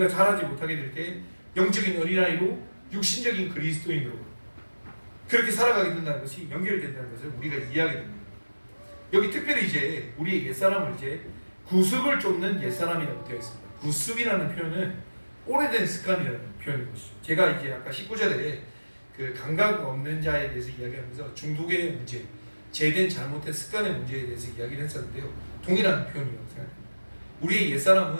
자라지 못하게 될 때 영적인 어린아이로 육신적인 그리스도인으로 그렇게 살아가게 된다는 것이 연결된다는 것을 우리가 이해하게 됩니다. 여기 특별히 이제 우리의 옛사람을 이제 구습을 쫓는 옛사람이라고 되어 있습니다. 구습이라는 표현은 오래된 습관이라는 표현인 것이죠. 제가 이제 아까 19절에 그 감각 없는 자에 대해서 이야기하면서 중독의 문제, 죄된 잘못된 습관의 문제에 대해서 이야기를 했었는데요. 동일한 표현이라고 생각합니다. 우리의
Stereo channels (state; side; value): inverted; both; correlation -1.00